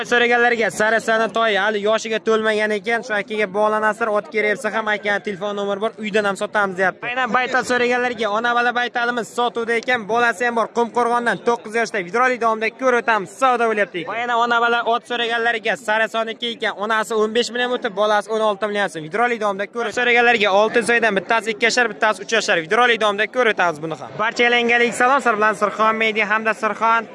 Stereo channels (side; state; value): both; identical; correlation 1.00